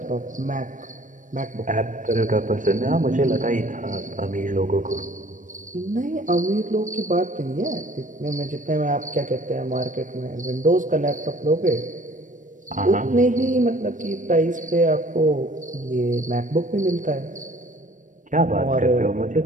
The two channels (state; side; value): late; left; 0.37 ms